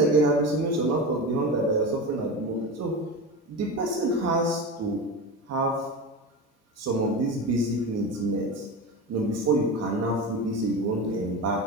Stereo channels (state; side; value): normal; both; correlation 0.25